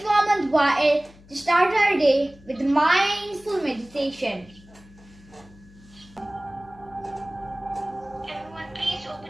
Hamad to start our day with mindful meditation. Everyone, please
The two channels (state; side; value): noise; left; hum, 24 dB below the sound